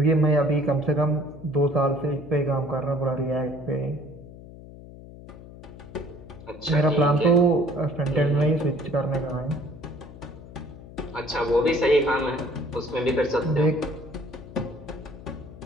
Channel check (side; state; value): left; noise; hum, 17 dB below the sound